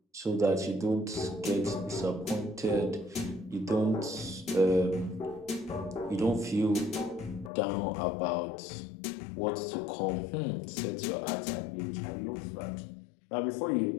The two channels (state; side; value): drops out; right; at 7.5 s